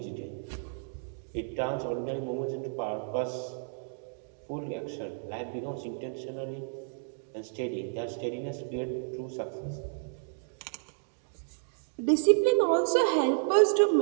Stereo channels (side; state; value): left; silent; digital silence